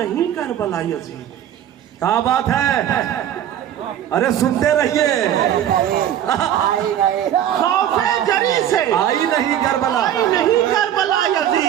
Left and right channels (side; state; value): left; quieter; 10.8 dB